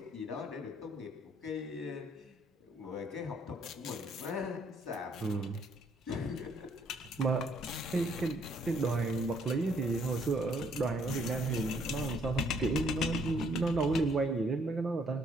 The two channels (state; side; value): normal; both; correlation 0.66